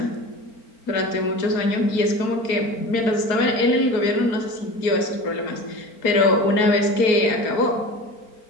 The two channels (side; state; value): right; late; 4.4 ms